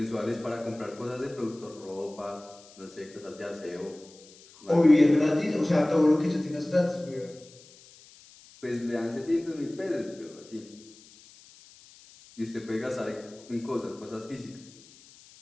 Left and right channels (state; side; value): noise; left; hiss, 23 dB below the sound